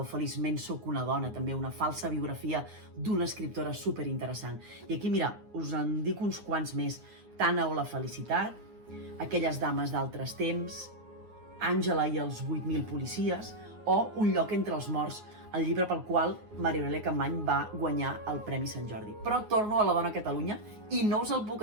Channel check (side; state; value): left; late; 9.5 ms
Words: Feliçment sóc una dona, també una falsa biografia d'una escriptora superinteressant. I aquí, mira, us en dic uns quants més. Tana o la felicitat, Aquelles dames d'altres temps, Àngela i els 8.000 policies, o Un lloc entre els morts, el llibre pel qual Maria Aurèlia Capmany va guanyar el Premi Sant Jordi. Però torno a La dona a Catalunya i no us el